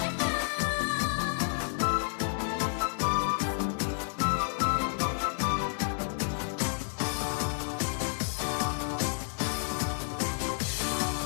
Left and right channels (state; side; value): silent; right; 57 dB below the other